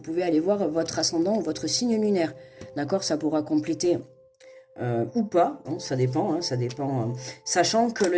pouvez aller voir votre ascendant ou votre signe lunaire. D'accord, ça pourra compléter ou pas, hein, ça dépend, sachant que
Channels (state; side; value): identical; both; correlation 1.00